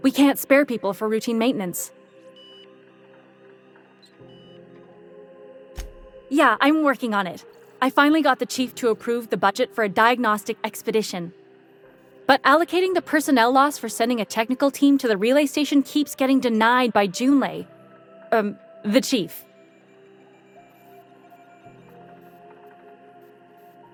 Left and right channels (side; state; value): both; identical; correlation 1.00